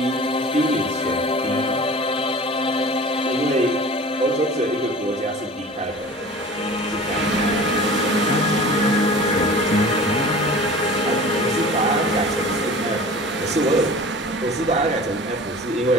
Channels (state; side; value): normal; both; correlation 0.40